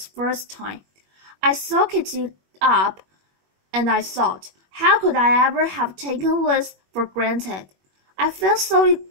time. I soaked it up and I thought, how could I ever have taken this for granted? I felt so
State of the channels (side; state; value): left; late; 21 ms